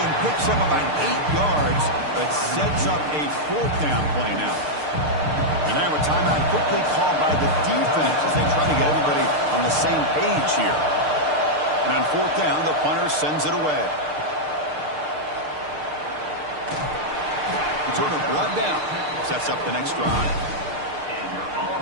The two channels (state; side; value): late; left; 6.6 ms